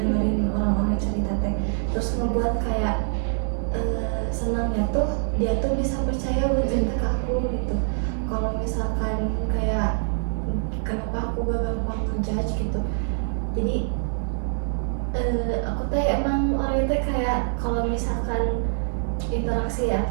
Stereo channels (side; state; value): left; silent; digital silence